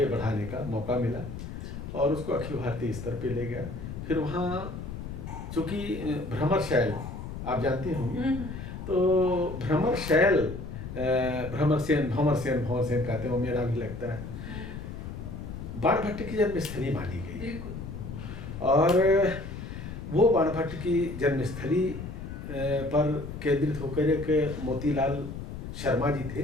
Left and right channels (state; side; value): noise; left; rumble, 8 dB below the sound